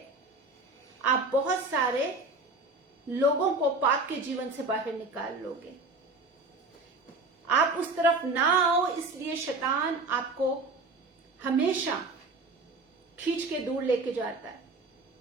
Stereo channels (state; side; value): quieter; left; 3.3 dB